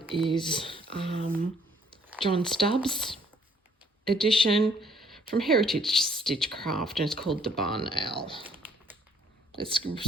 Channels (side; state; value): both; normal; correlation 0.63